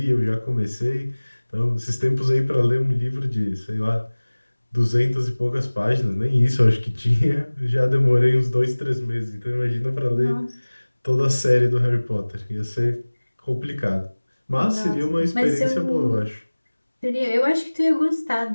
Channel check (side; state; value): both; inverted; correlation -1.00